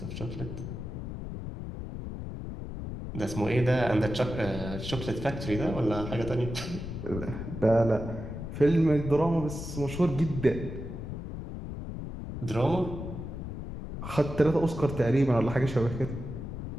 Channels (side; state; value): left; noise; rumble, 7 dB below the sound